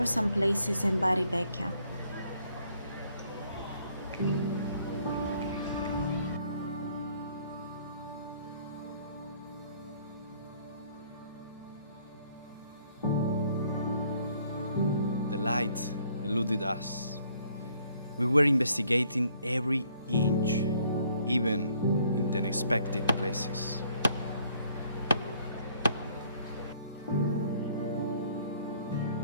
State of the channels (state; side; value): inverted; both; correlation -0.64